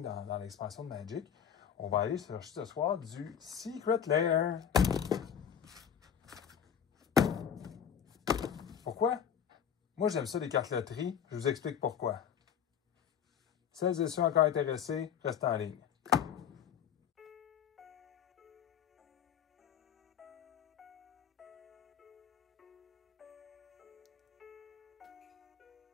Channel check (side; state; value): right; quieter; 8.4 dB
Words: dans l'expansion de Magic. On va aller chercher ce soir du Secret Lair. Pourquoi? Moi, j'aime ça, les cartes loterie. Je vous explique pourquoi. Celles et ceux encore intéressés, restez en ligne.